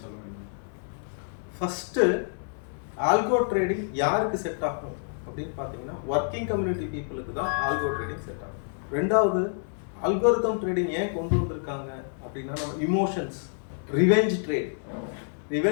சொல்ல முடியுமா? ஃபஸ்ட்டு ஆல்கோ ட்ரேடிங் யாருக்கு செட் ஆகும் அப்படின்னு பார்த்தீங்கன்னா, ஒர்க்கிங் கம்யூனிட்டி பீப்புளுக்கு தான் ஆல்கோ ட்ரேடிங் செட் ஆகும். ரெண்டாவது, அல்கோரிதம் ட்ரேடிங் ஏன் கொண்டு வந்திருக்காங்க அப்படின்னா, நம்ம இமோஷன்ஸ், ரிவெஞ்ச்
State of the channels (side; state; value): right; silent; 59 dB below the other